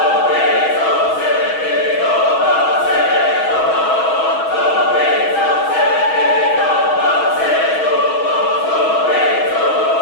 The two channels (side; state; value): right; late; 6.2 ms